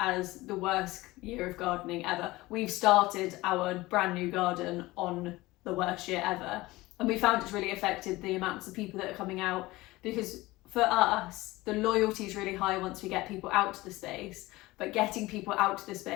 the worst year of gardening ever. We've started our brand new garden on the worst year ever, and we found it's really affected the amounts of people that are coming out, because for us the loyalty is really high once we get people out to the space, but getting people out to the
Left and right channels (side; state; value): right; quieter; 19.6 dB